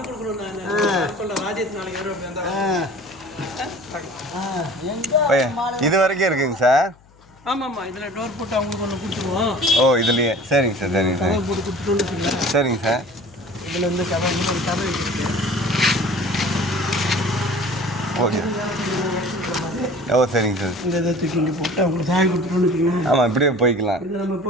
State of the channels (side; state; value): left; noise; hum, 28 dB below the sound